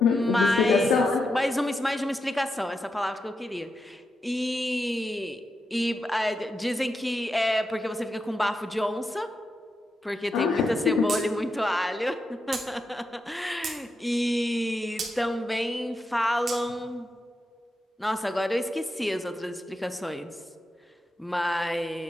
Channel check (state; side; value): normal; both; correlation 0.86